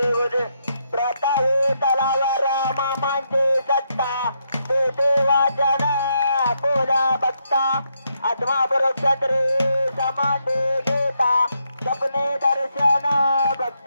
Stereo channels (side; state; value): both; inverted; correlation -0.79